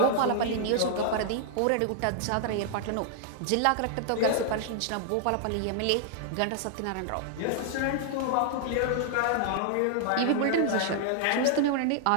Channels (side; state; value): both; different; correlation -0.01